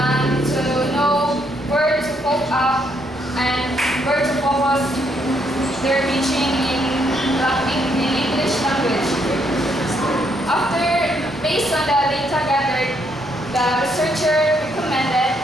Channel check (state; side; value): noise; left; rumble, 27 dB below the sound